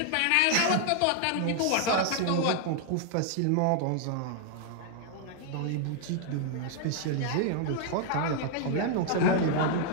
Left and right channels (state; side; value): different; both; correlation 0.00